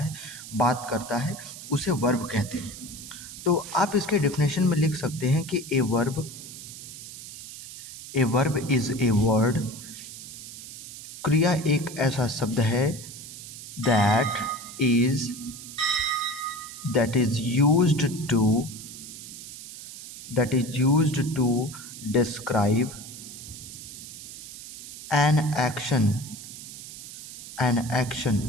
बात करता है, उसे वर्ब कहते हैं। तो आप इसके डेफिनेशन में लिख सकते हैं कि a verb is a word. क्रिया एक ऐसा शब्द है that is used to describe an action,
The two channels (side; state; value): right; noise; hiss, 13 dB below the sound